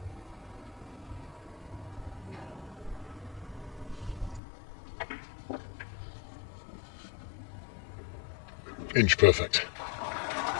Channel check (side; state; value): right; drops out; at 4.4 s